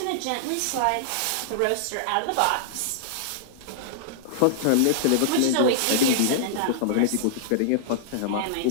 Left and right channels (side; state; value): both; different; correlation -0.01